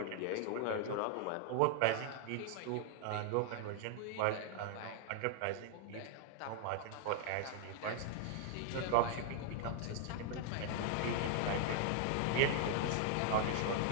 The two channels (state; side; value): different; both; correlation 0.00